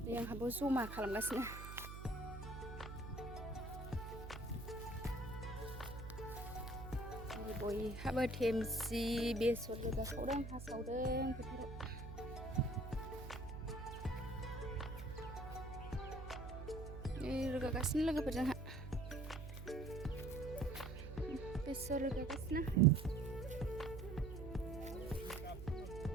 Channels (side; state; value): right; noise; hum, 9 dB below the sound